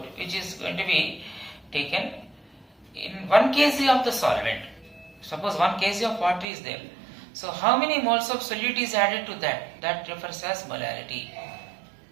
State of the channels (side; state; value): left; drops out; at 6.5 s